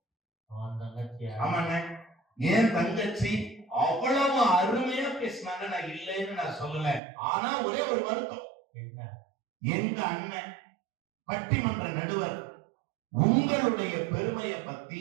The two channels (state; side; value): drops out; left; at 7.0 s